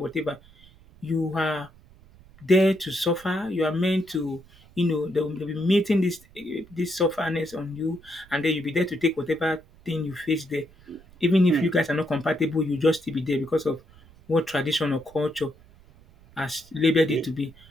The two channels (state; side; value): noise; right; rumble, 25 dB below the sound